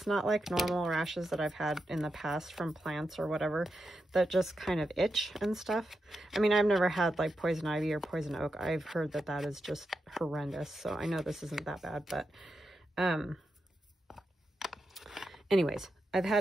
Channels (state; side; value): normal; both; correlation 0.87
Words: not like normal rashes that I've had in the past from plants or whatever that just kind of itch and stuff. I mean, I've never had like poison ivy or poison oak. I've heard that that is just horrendous. So I know this isn't that bad, but anyways, I've